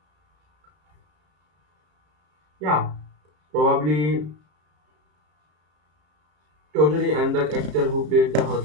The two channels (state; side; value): late; left; 33 ms